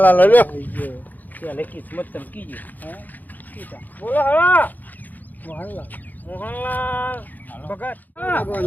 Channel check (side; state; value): right; late; 0.083 ms